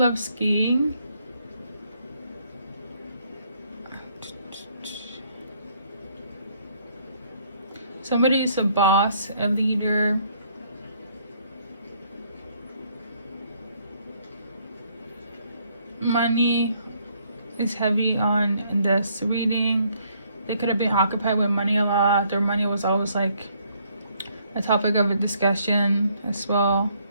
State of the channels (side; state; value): both; inverted; correlation -0.67